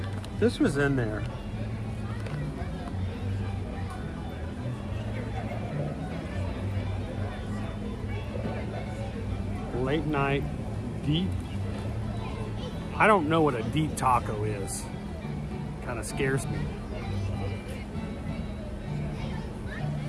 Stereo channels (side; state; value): both; identical; correlation 1.00